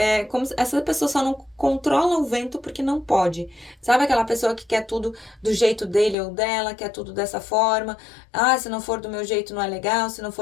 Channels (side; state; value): right; drops out; at 6.2 s